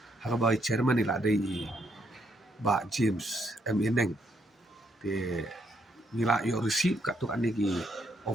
haka bai chairman ni ada i ba James M Eneng te ni la yo receive ka tu ani ki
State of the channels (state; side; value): normal; both; correlation 0.74